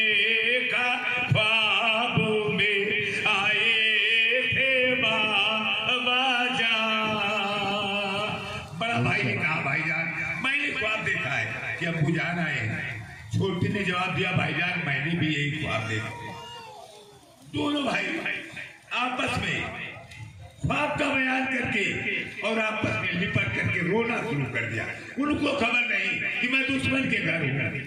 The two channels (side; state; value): both; identical; correlation 1.00